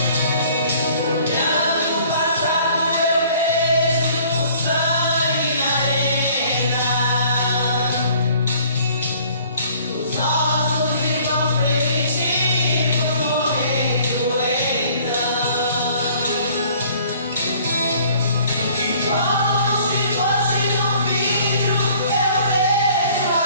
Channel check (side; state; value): both; inverted; correlation -0.55